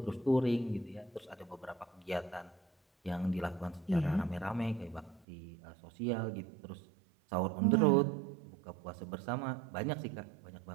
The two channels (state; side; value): drops out; left; at 5.2 s